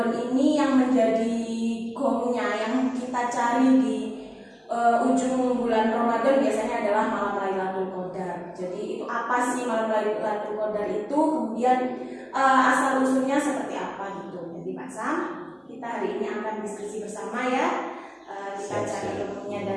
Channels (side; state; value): both; identical; correlation 1.00